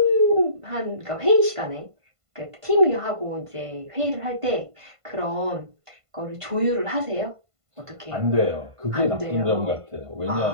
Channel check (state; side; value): late; left; 1.5 ms